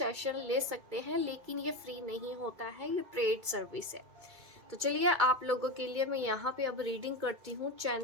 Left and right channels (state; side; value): late; left; 2.3 ms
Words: ले सकते हैं। लेकिन ये फ्री नहीं होता है, ये पेड सर्विस है। तो चलिए, आप लोगों के लिए मैं यहाँ पे अब रीडिंग करती हूँ